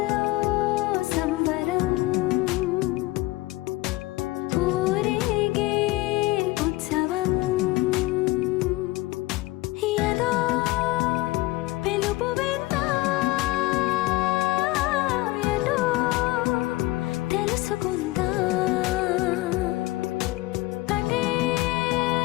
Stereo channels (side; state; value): right; quieter; 19.5 dB